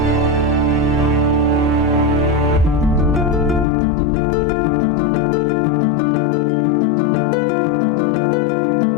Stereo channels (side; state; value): right; drops out; at 3.7 s